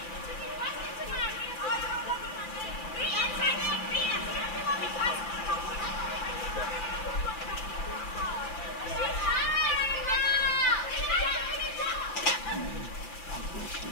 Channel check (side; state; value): right; late; 5.9 ms